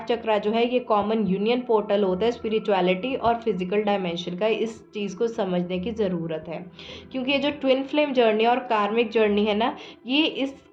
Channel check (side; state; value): both; identical; correlation 1.00